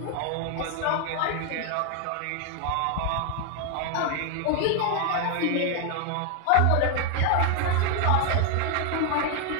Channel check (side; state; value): both; different; correlation 0.01